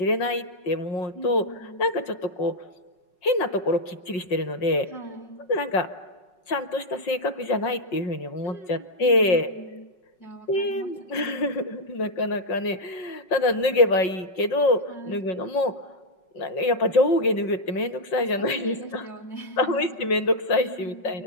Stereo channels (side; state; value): right; late; 5.4 ms